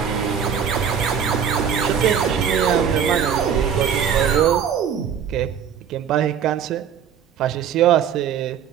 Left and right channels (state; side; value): quieter; left; 8.0 dB